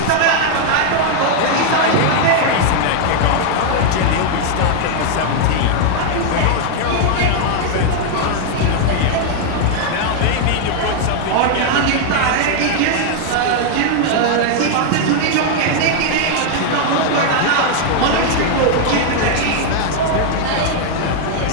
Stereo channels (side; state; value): both; different; correlation 0.00